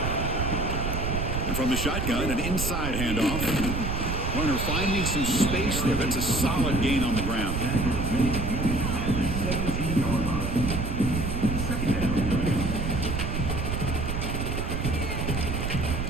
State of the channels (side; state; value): right; noise; rumble, 2 dB below the sound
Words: And from the shotgun, an inside handoff. Runner finding some space there. That's a solid gain on the ground.